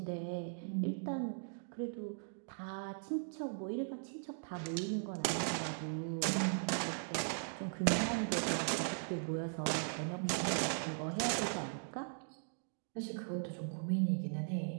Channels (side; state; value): left; silent; digital silence